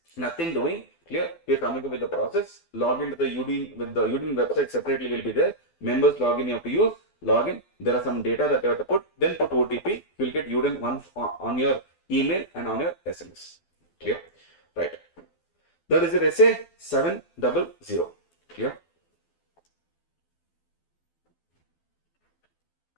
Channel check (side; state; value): right; late; 12 ms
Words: nothing doing. Clear? We are coming up with the process. Log into the UDIN, with the UDIN website separately will be there. Members login you have to use. Login. There are some data that you have to put. Then put OTP. You will get UDIN once on your email and on your SMS. Clear? Right. That is your SA 700. Clear?